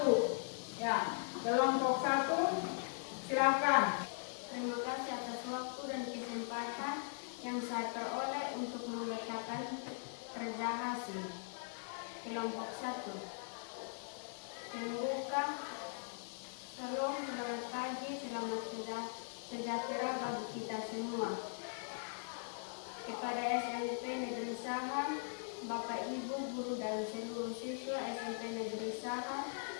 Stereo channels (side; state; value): right; silent; digital silence